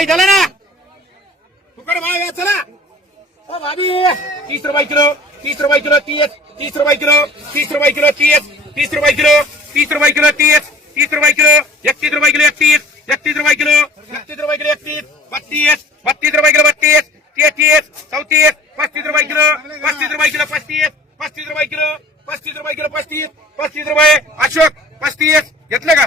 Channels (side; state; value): both; normal; correlation 0.46